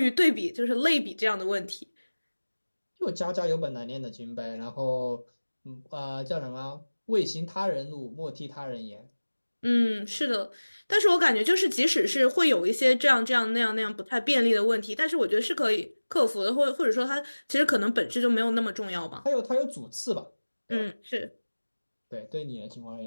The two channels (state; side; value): inverted; both; correlation -1.00